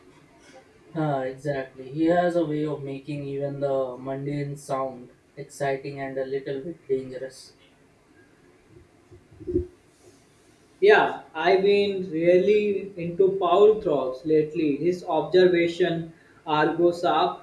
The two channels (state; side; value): identical; both; correlation 1.00